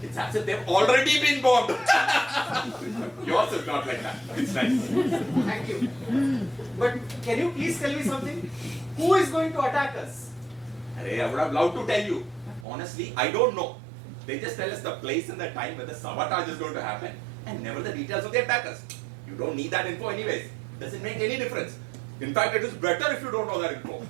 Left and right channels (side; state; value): left; drops out; at 12.7 s